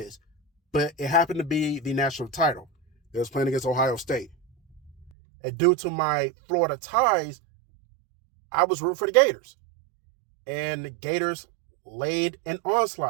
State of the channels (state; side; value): drops out; left; at 5.1 s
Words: But it happened to be the national title. They was playing against Ohio State. And due to my Florida ties, I was rooting for the Gators. And the Gators laid an